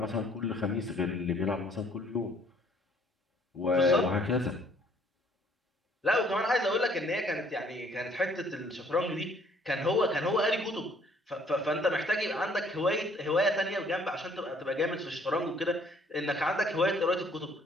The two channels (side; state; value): both; normal; correlation 0.61